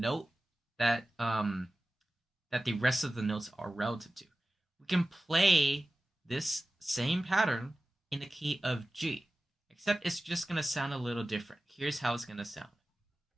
that that the rest of the notes are relative to. We can play this same pattern in the key of G, except it's just going to sound a little different. Here's how it's going to sound.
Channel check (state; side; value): normal; both; correlation 0.95